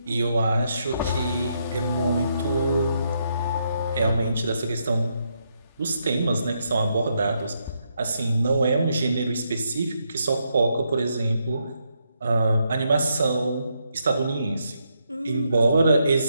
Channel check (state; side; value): inverted; both; correlation -0.79